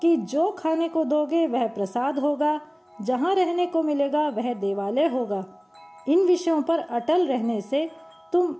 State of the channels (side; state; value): both; identical; correlation 1.00